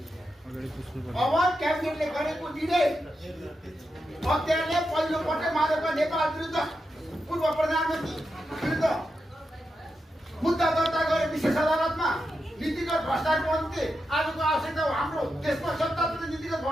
अब क्याबिनेटले गरेको निर्णय हत्याले पहिलोपटक माधव नेपाल विरुद्ध पूर्व प्रधानमन्त्री विरुद्ध मुद्दा दर्ता गरे विशेष अदालतमा नीतिगत भ्रष्टाचारको अन्त्य आजको आवश्यकता हो। हाम्रो देशमा सत्तारूढ नीतिगत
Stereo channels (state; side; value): normal; both; correlation 0.87